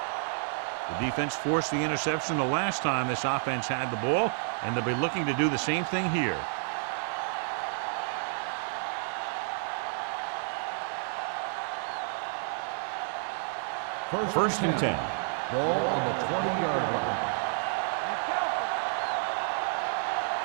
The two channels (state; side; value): silent; left; 58 dB below the other